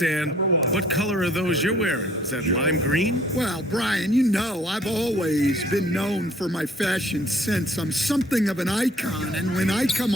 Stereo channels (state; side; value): normal; both; correlation 0.59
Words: What color are those you're wearing? Is that lime green? Well, Brian, you know I've always been known for my fashion sense. I'm something of an icon, and when I come